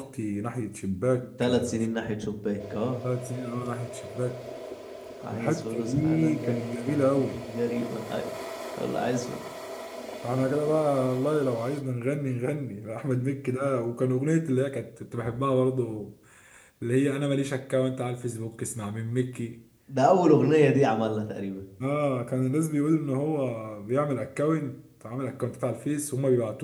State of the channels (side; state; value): both; identical; correlation 1.00